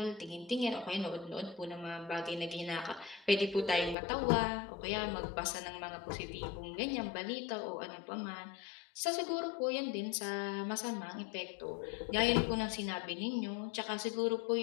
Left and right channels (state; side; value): drops out; right; at 4.0 s